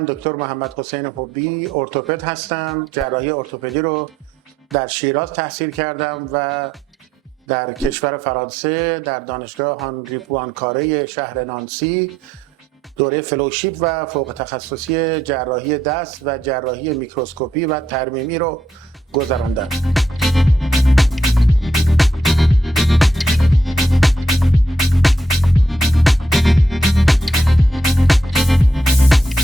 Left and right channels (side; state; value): both; normal; correlation 0.77